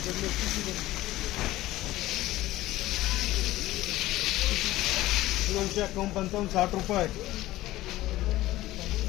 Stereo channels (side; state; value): right; quieter; 16.5 dB